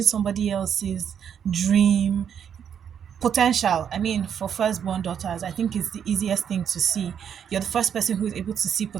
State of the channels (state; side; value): quieter; left; 8.2 dB